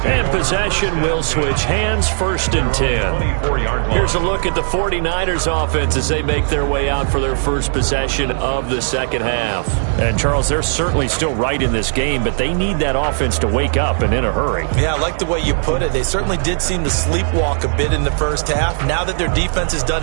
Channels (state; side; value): silent; left; digital silence